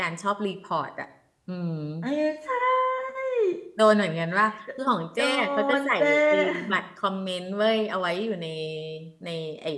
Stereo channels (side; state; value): both; identical; correlation 1.00